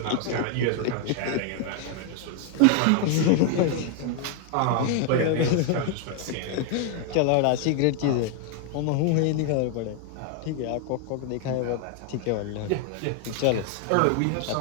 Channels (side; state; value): both; different; correlation 0.00